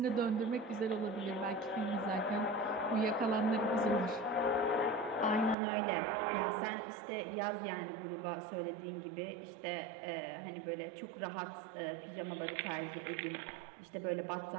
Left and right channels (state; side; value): drops out; left; at 5.6 s